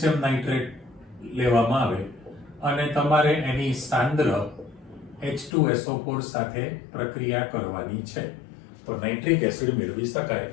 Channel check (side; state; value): right; drops out; at 5.5 s